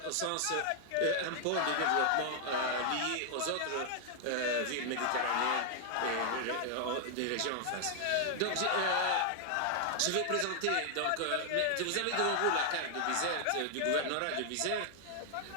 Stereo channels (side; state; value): both; different; correlation 0.00